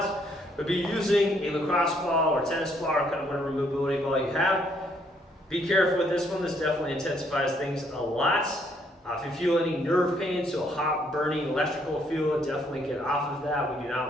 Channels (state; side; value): normal; both; correlation 0.69